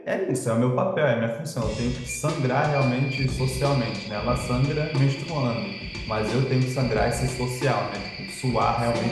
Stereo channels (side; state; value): both; identical; correlation 1.00